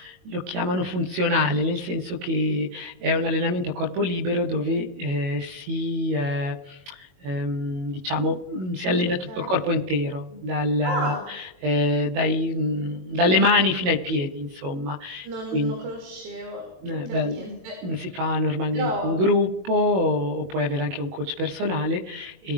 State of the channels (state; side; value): late; left; 22 ms